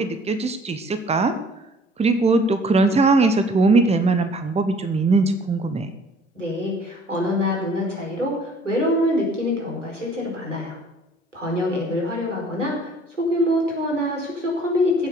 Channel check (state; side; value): normal; both; correlation 0.54